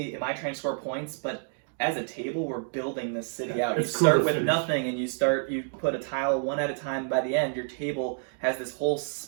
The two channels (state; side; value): silent; left; 57 dB below the other